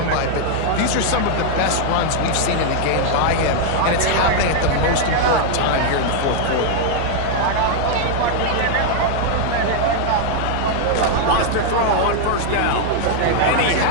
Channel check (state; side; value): different; both; correlation 0.00